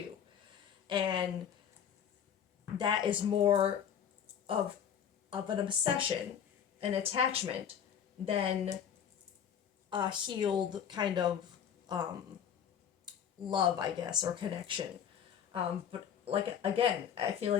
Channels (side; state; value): right; quieter; 8.5 dB